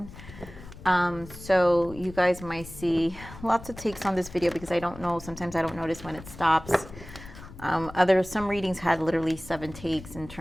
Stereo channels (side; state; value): left; noise; rumble, 16 dB below the sound